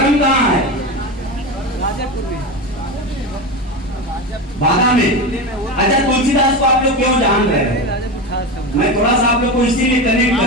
कहाँ है? राजापुर में। बाधा में। अच्छा, तुलसीदास को आप लोग क्यों जान रहे हैं? मैं थोड़ा सा आप लोग को इसीलिए कनेक्ट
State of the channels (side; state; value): both; normal; correlation 0.21